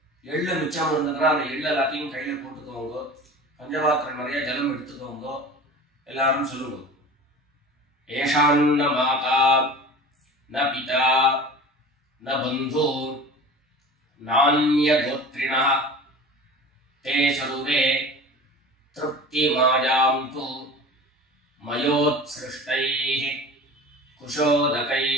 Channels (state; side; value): normal; both; correlation 0.37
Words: எள்ளு மிச்சம் இருந்ததுன்னா அந்த எள்ளு எல்லாத்தையும் கையில போட்டுக்கோங்க. பஞ்சபாத்திரம் நிறைய ஜலம் எடுத்துக்கோங்க. எல்லாரும் சொல்லுங்க ஏஷான்ன மாதா ந பிதா ந பந்து நான்ய கோத்ரிணः தே சர்வே திருப்தி மாயாம் து மயோத்ஸ்ருஷ்டைஹ